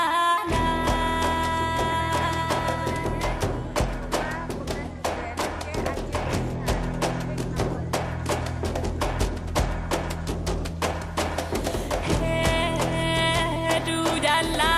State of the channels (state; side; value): identical; both; correlation 1.00